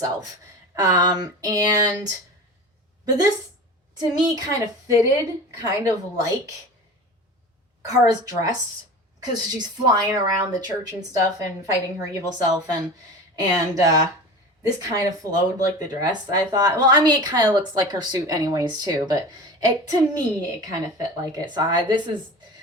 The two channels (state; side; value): normal; both; correlation 0.33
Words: But this to me kind of fitted, kind of like Kara's dress, because she's flying around the church and stuff and fighting her evil self, and this kind of flowed like the dress, I thought. Well, I mean, it kind of looks like her suit anyways, too, but to me, it kind of fit like it. So this is